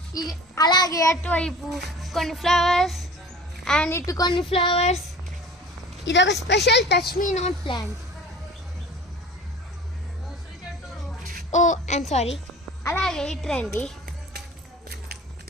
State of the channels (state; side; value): normal; both; correlation 0.41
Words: అలాగే అటువైపు కొన్ని ఫ్లవర్స్ అండ్ ఇటు కొన్ని ఫ్లవర్స్. ఇది ఒక special touch me not plant. Oh I'm sorry. అలాగే ఇటు రండి,